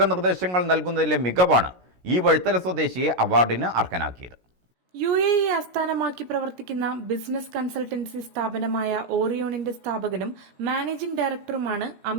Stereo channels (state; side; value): late; left; 16 ms